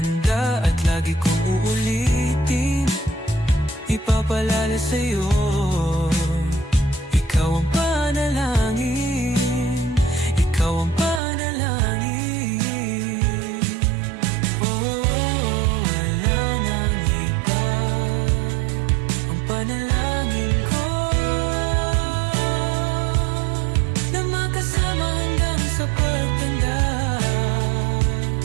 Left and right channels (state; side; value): drops out; left; at 11.2 s